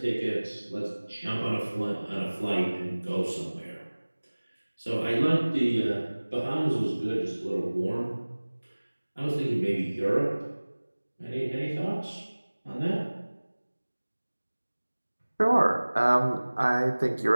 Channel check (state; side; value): inverted; both; correlation -1.00